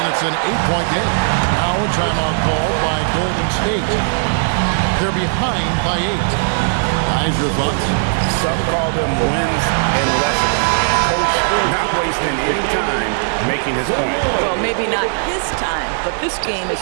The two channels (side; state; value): left; silent; digital silence